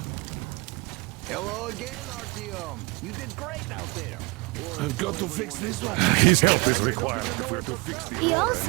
Hello again, Artyom. You did great out there. I've got to fix this one. His help is required if we're to fix the... He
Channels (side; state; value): left; quieter; 27.1 dB